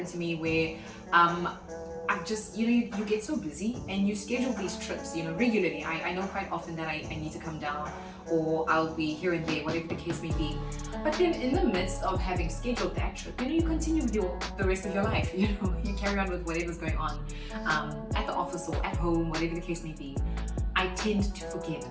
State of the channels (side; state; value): both; identical; correlation 1.00